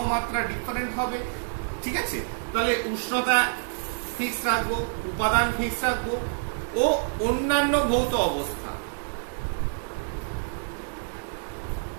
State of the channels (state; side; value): silent; left; digital silence